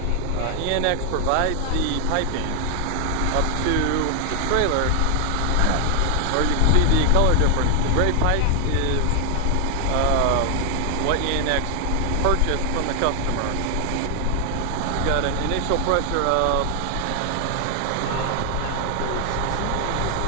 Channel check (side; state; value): both; different; correlation 0.00